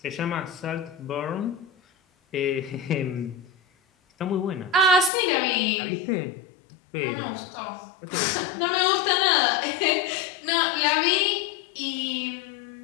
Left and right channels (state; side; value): drops out; right; at 5.1 s